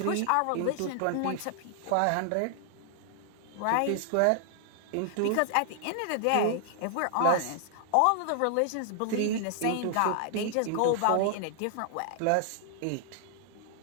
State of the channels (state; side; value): different; both; correlation -0.01